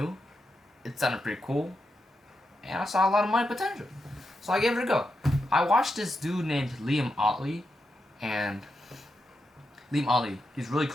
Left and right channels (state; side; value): normal; both; correlation 0.86